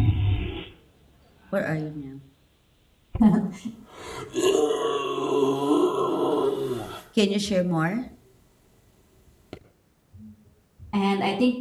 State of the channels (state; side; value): identical; both; correlation 1.00